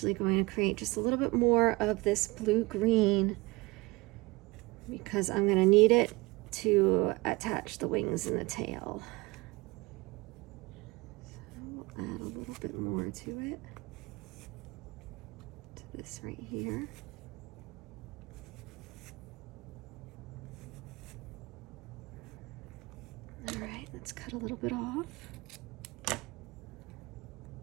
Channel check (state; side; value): quieter; left; 23.6 dB